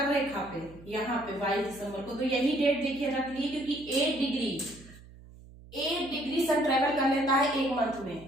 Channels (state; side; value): noise; right; hum, 20 dB below the sound